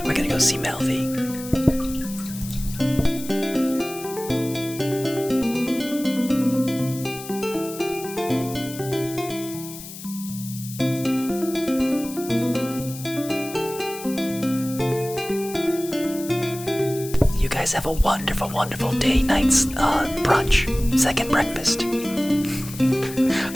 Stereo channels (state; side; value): noise; left; hiss, 13 dB below the sound